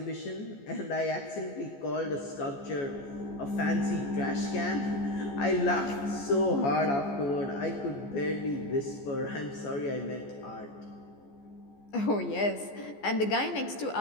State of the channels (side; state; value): right; late; 14 ms